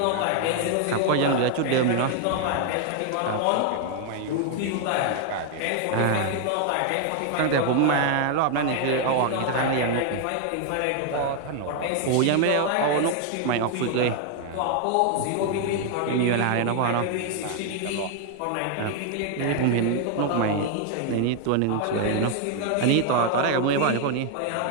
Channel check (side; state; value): both; different; correlation 0.00